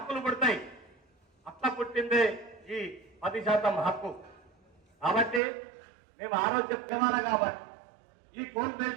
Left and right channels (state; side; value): drops out; left; at 5.4 s